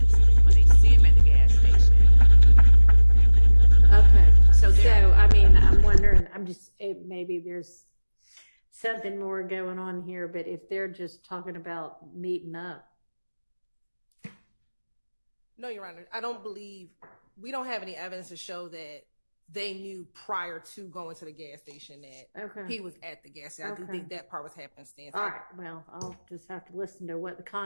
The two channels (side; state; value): both; inverted; correlation -1.00